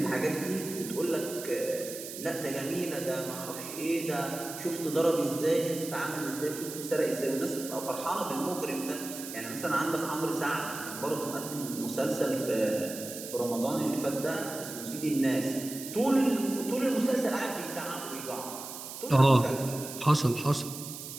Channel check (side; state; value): right; noise; hiss, 10 dB below the sound